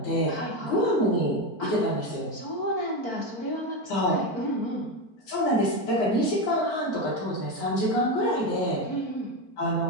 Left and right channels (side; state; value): right; late; 4.5 ms